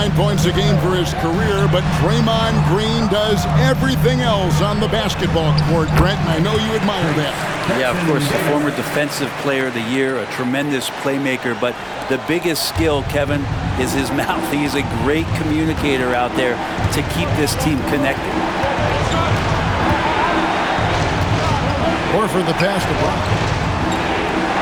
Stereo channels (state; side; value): identical; both; correlation 1.00